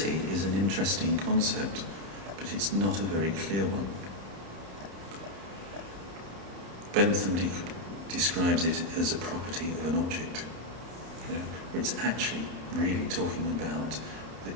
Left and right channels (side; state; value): left; late; 30 ms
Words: is an interesting concept, but it's not a very clear one. Bentham describes it as a property of an object, where it's actually really talking about